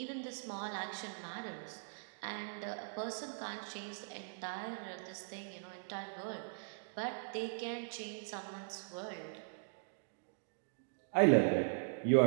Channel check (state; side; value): silent; left; digital silence